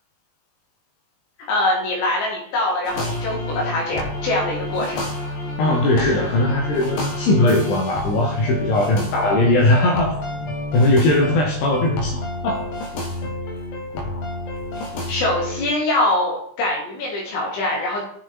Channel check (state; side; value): late; right; 20 ms